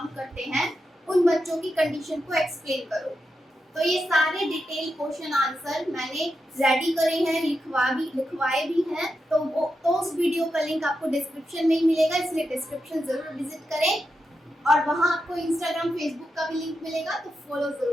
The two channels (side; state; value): both; normal; correlation 0.87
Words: करते हैं, उन बच्चों की कंडीशन को एक्सप्लेन करो। तो ये सारे डिटेल क्वेश्चन आंसर मैंने रेडी करे हैं, लिखवाए भी हैं। तो उस वीडियो का लिंक आपको डिस्क्रिप्शन में ही मिलेगा, इसलिए डिस्क्रिप्शन जरूर विजिट करें। और वहाँ आपको इंस्टाग्राम, फेसबुक का भी लिंक मिलेगा, तो फॉलो